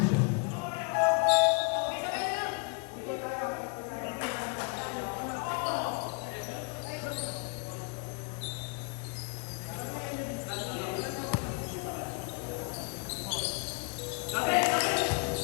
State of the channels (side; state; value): right; quieter; 36.1 dB